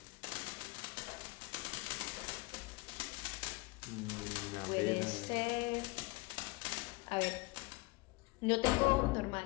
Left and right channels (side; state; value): right; quieter; 25.5 dB